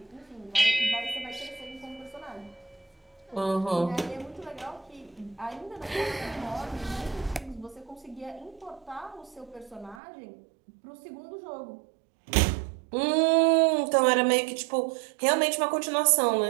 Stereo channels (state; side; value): drops out; left; at 10.0 s